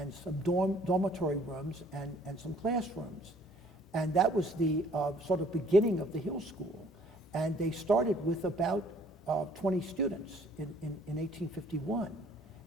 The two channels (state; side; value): normal; both; correlation 0.59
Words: some dormitory rooms and some classrooms. And that was the sort of beginning of the Hill School. And they started with about 20 students in 1851.